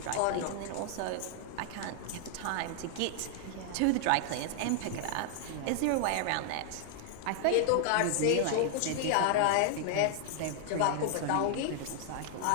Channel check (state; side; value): different; both; correlation -0.01